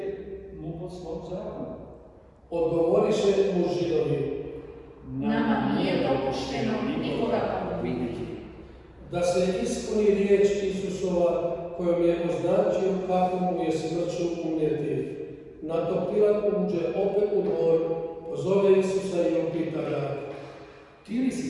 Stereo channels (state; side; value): identical; both; correlation 1.00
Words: mu po svom zakonu. Odgovoriše mu Židovi. Nama nije dopušteno nikoga pogubiti. Da se ispuni riječ Isusova kojom je označio kako mu je smrću umrijeti. Na to Pilat uđe opet u dvor, pozove Isusa i upita ga. Ti li